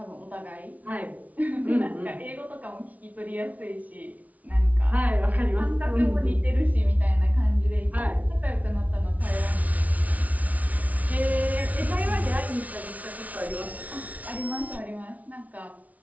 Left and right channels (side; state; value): left; late; 0.071 ms